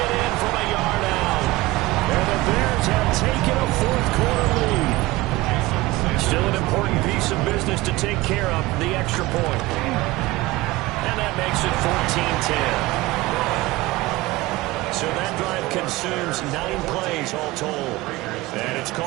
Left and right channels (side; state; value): left; quieter; 19.5 dB